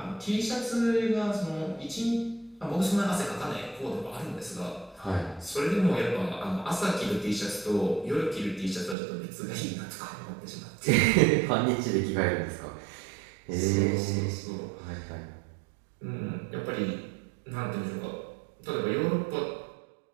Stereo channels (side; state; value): left; drops out; at 9.0 s